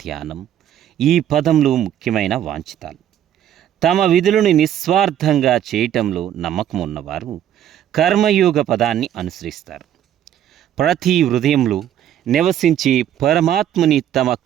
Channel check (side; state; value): left; quieter; 10.8 dB